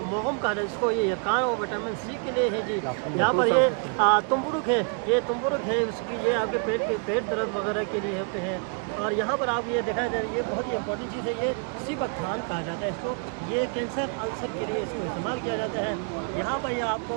मोहम का, इसको ये कान और विटामिन सी के लिए है जी। यहाँ पर ये तुम्बुरुक है, ये तुम्बुरुक है उसकी, ये आपके पेट दर्द वगैरह के लिए होते हैं। और यहाँ पर आप ये दिखाई दे रही है, ये बहुत ही इंपॉर्टेंट चीज़ है, ये सीबकथान कहा जाता है इसको। ये कैंसर अल्सर के लिए इसको इस्तेमाल किया जाता है। यहाँ पर ये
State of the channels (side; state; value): left; quieter; 38.4 dB